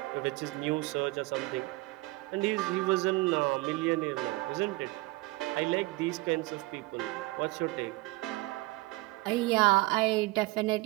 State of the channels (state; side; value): quieter; left; 22.0 dB